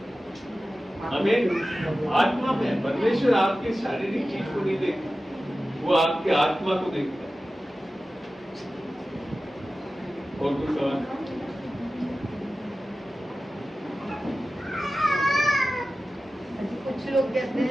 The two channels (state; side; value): normal; both; correlation 0.95